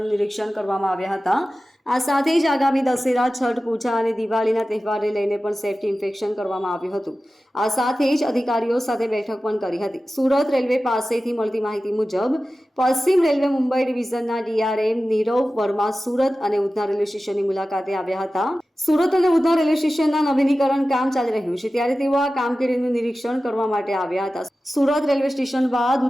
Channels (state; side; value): normal; both; correlation 0.95